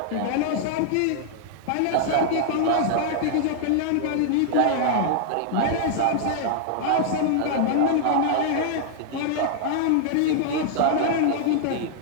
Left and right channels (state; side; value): different; both; correlation -0.01